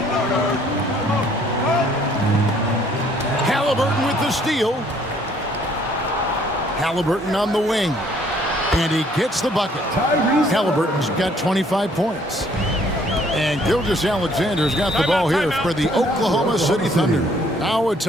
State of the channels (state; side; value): normal; both; correlation 0.62